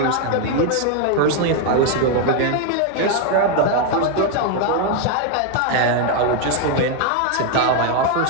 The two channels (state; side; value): different; both; correlation 0.01